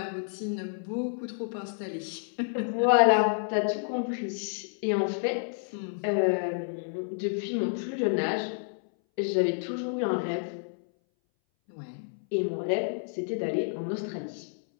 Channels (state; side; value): silent; right; 58 dB below the other